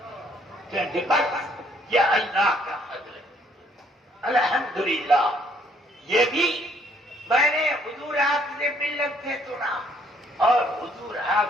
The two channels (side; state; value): both; normal; correlation 0.65